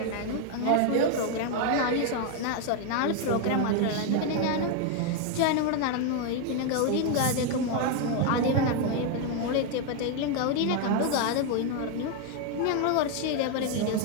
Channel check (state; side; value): different; both; correlation 0.01